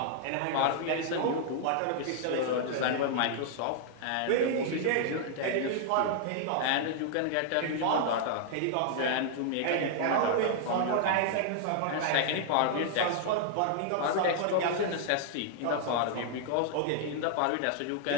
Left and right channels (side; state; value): both; different; correlation -0.01